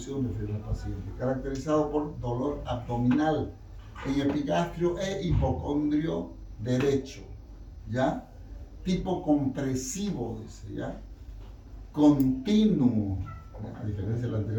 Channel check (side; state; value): both; identical; correlation 1.00